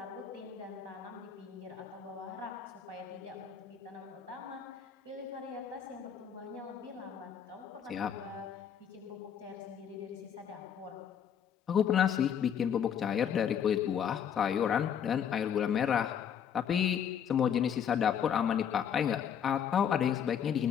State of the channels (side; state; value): right; quieter; 8.3 dB